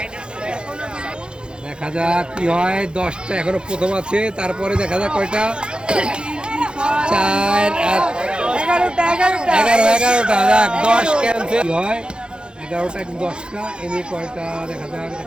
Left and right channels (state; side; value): late; left; 0.050 ms